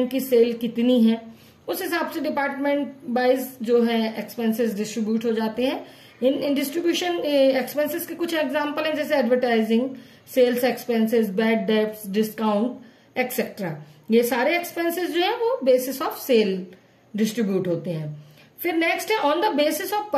की सेल कितनी है, उस हिसाब से डिपार्टमेंट वाइज जो है एक्सपेंसेस डिस्ट्रीब्यूट हो जाते हैं। इन डिस्ट्रीब्यूशन एक्सपेंसेस के कुछ एग्जांपल हैं, जैसे advertising, sales expenses, bad debts, discount etcetera. ये सारे एक्सपेंसेस जो है वो बेसिस ऑफ सेल डिस्ट्रीब्यूट होते हैं। फिर नेक्स्ट है on the basis of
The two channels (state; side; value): identical; both; correlation 1.00